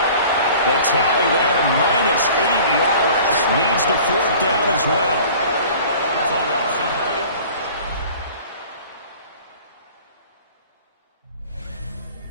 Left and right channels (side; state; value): both; inverted; correlation -0.46